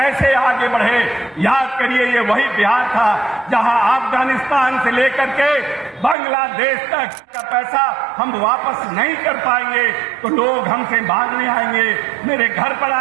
आगे बढ़े। याद करिए, ये वही बिहार था जहां अफगानिस्तान से लेकर के बांग्लादेश तक का पैसा हम वापस नहीं कर पाएंगे तो लोग हमसे मांगने आएंगे, मेरे घर पर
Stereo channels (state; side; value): drops out; left; at 6.2 s